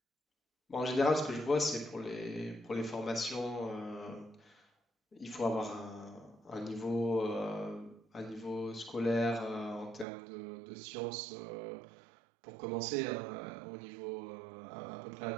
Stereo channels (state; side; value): drops out; left; at 10.1 s